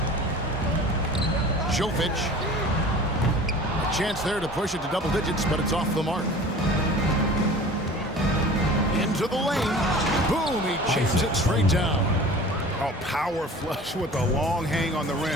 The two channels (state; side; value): normal; both; correlation 0.42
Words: Jokic. A chance there to push it to double digits, but it's off the mark. To the lane. Boom, he chips it straight down. Oh, power flush with a long hang on the